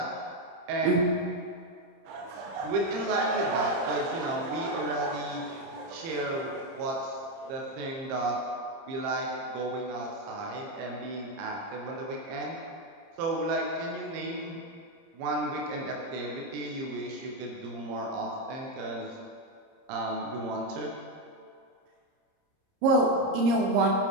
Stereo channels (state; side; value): late; left; 30 ms